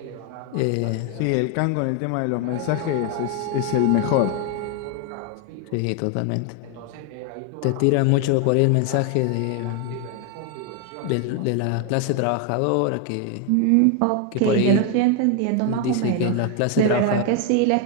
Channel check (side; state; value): both; different; correlation 0.01